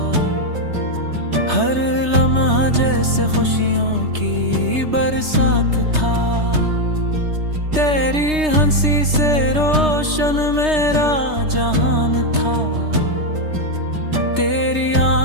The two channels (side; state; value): left; late; 3.3 ms